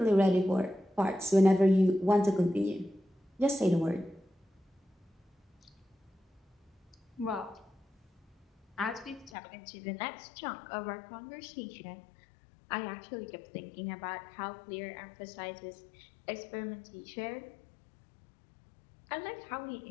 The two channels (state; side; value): drops out; right; at 9.3 s